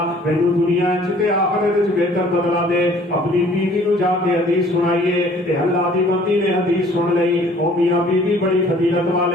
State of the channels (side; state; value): both; normal; correlation 0.54